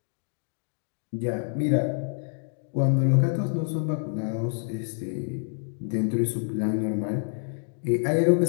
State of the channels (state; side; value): silent; right; digital silence